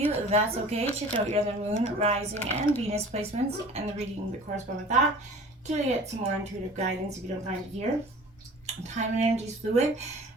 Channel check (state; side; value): normal; both; correlation 0.44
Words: that's okay. Check out your other Moon, Rising, and Venus placements and the reading that correspond with that to get some more intuitive guidance if you don't find it here. Time and energy is fluid,